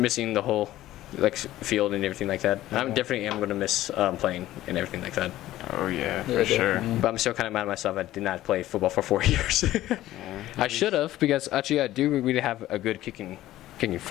the whole like field and everything like that. I'm definitely am gonna miss playing and everything like that. Oh yeah, for sure. But I'm still kind of mad at myself. I did not play football for 4 years. I should have, because actually I do really have a good kicking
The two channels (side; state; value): right; quieter; 14.8 dB